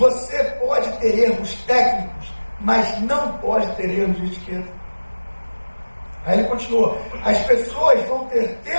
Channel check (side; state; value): both; inverted; correlation -1.00